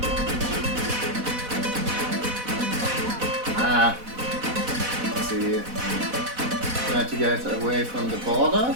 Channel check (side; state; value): left; late; 4.1 ms